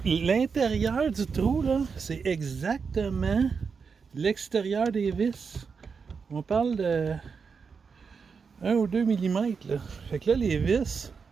l'intérieur du trou, là, c'est exactement l'extérieur des vis. On parle de 1 ou 2 mm. Là. Fait que là, les vis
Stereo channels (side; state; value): left; quieter; 5.6 dB